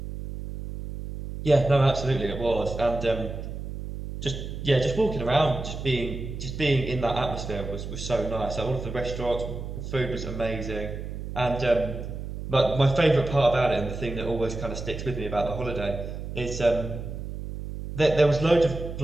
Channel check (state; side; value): noise; right; hum, 7 dB below the sound